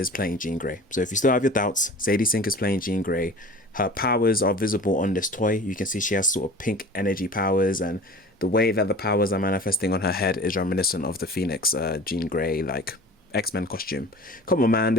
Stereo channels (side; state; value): both; normal; correlation 0.41